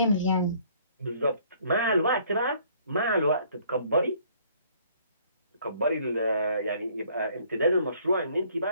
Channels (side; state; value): both; inverted; correlation -0.60